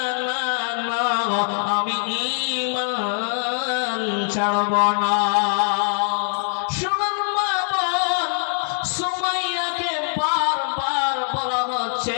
না না, আমি ঈমান ছাড়ব না। শুনুন মা বোন, সুমাইয়াকে বারবার বলা হচ্ছে,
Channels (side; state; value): right; silent; 61 dB below the other